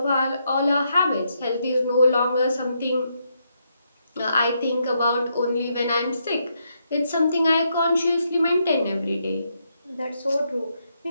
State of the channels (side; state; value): both; inverted; correlation -0.79